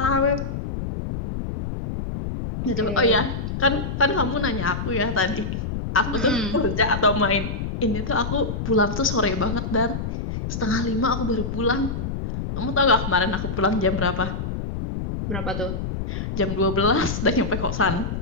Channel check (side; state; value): left; noise; rumble, 4 dB below the sound